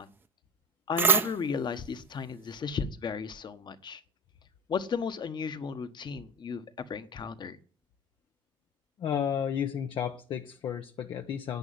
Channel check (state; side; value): normal; both; correlation 0.23